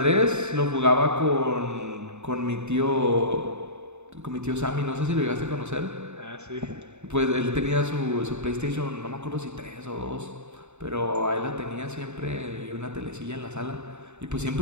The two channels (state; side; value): late; left; 0.82 ms